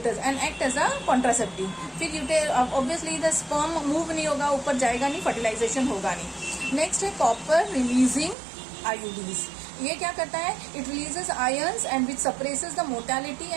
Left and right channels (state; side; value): drops out; left; at 8.3 s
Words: and act as a contraceptive. फिर ऑब्वियसली द स्पर्म मूव नहीं होगा, ऊपर जाएगा नहीं, फर्टिलाइजेशन होगा नहीं. नेक्स्ट है कॉपर रिलीजिंग IUDs. ये क्या करता है? It releases ions and which suppresses the mortality